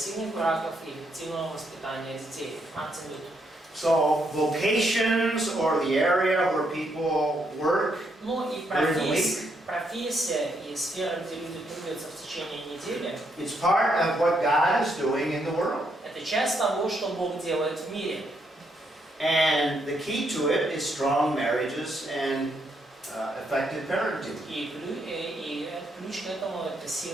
браков и эффективного воспитания детей. Мартин Лютер. So vocations or the area where people work И during the week, профессия и сфера, где люди трудятся в течение недели, it's part of what God is doing in the world. это часть того, что Бог делает в мире. And the key to it is strong marriages and effective parenting. И ключ к этому – это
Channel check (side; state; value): both; normal; correlation 0.76